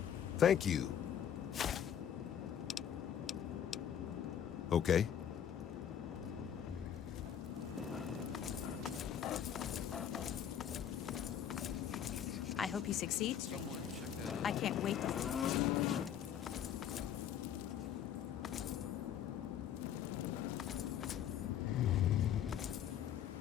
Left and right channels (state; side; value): quieter; right; 9.4 dB